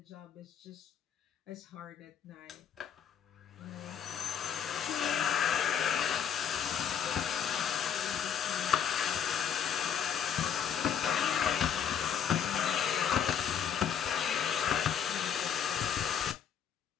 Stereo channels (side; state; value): right; quieter; 8.2 dB